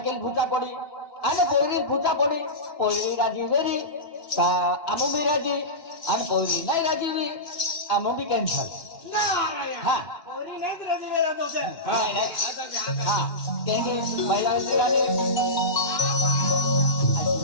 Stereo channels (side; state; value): right; late; 2.9 ms